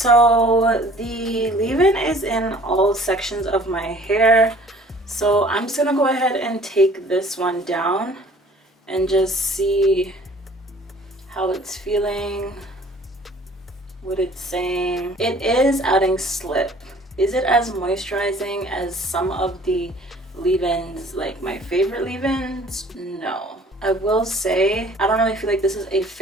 the leave-in is in all sections of my hair, so I'm just gonna go ahead and take this one down and just see how it's feeling, what it's saying. It is adding slip. Is it as moisturizing as some of the leave-ins, like my favorite leave-ins? No. I will say I don't really feel like this is a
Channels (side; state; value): both; normal; correlation 0.52